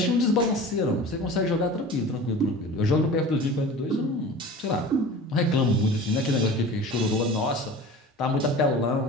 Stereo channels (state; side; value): normal; both; correlation 0.37